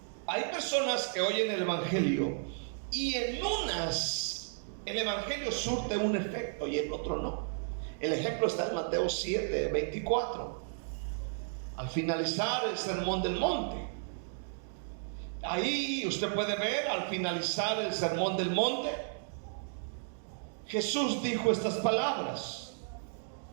hay personas que oyen el evangelio y en unas el evangelio surte un efecto y en otro no. El ejemplo está en Mateo 7:24. Al finalizar el sermón del monte, ahí usted puede ver, al finalizar el sermón del monte, Jesús dijo estas palabras:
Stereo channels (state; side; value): silent; left; digital silence